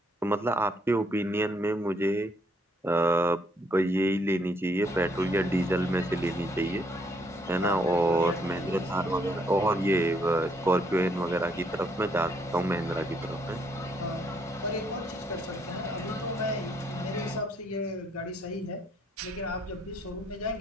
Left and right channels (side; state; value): both; normal; correlation 0.70